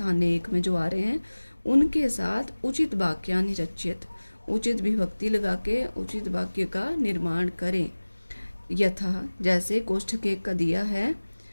एक में जो आ रहे हैं उनके साथ उचित वाक्यानि रच्यत, उचित विभक्ति लगा के उचित वाक्य का निर्माण करें। यथा जैसे कोष्ठक 1 का दिया है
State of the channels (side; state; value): both; inverted; correlation -1.00